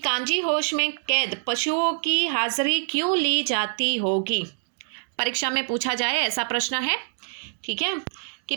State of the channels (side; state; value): left; silent; digital silence